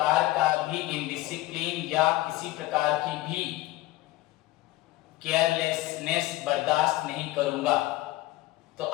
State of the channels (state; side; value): quieter; right; 17.3 dB